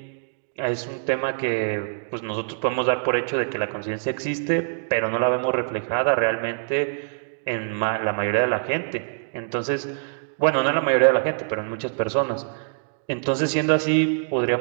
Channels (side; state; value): left; silent; digital silence